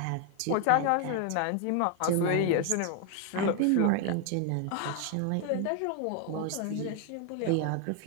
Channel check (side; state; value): both; different; correlation 0.01